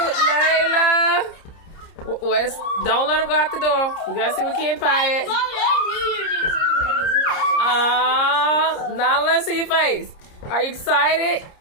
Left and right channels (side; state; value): right; late; 30 ms